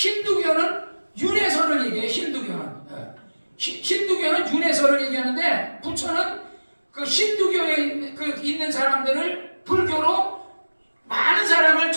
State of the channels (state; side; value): inverted; both; correlation -1.00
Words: 윤회설을 얘기해요. 힌두교는 윤회설을 얘기하는데 부처는 힌두교에 있는 사람들을 불교로 많은 사람을